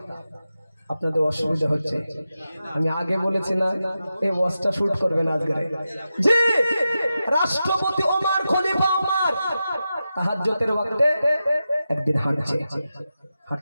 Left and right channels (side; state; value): both; inverted; correlation -0.91